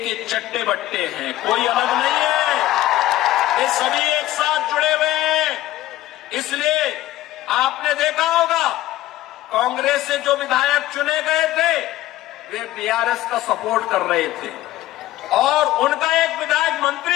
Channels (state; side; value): quieter; right; 15.3 dB